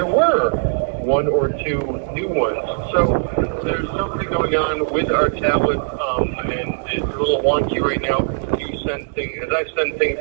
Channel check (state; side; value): silent; left; digital silence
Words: were 1 or 2 new ones. So there's something going on with our tablet, and it's a little wonky right now. You send things, as I send things